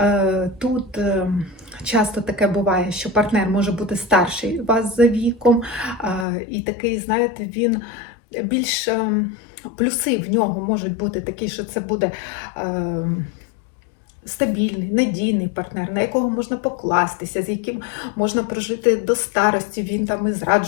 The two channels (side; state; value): right; drops out; at 6.2 s